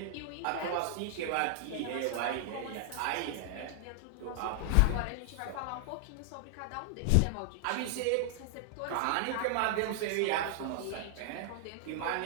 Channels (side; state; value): both; different; correlation 0.00